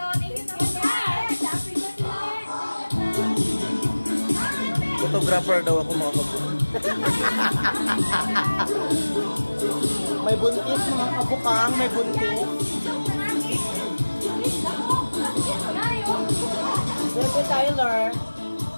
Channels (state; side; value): inverted; both; correlation -1.00